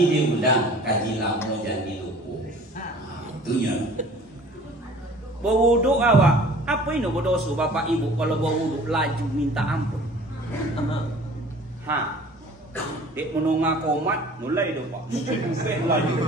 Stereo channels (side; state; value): both; normal; correlation 0.48